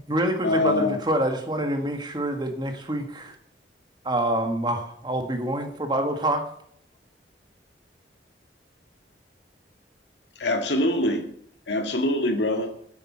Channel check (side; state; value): both; normal; correlation 0.29